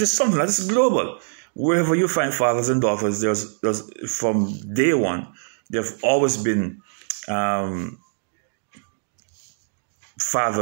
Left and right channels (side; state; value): left; silent; 63 dB below the other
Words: is something that is global. Wherever you find fathers and daughters, there's from day one, there have always been